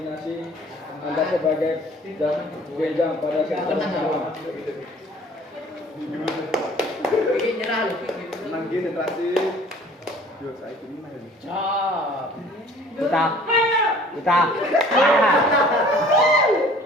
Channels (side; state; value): both; normal; correlation 0.51